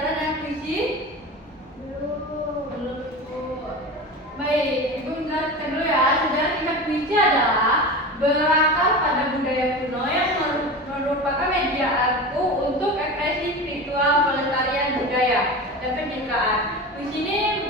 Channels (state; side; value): normal; both; correlation 0.29